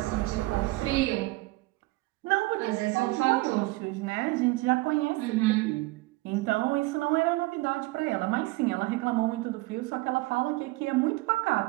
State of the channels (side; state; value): left; quieter; 21.5 dB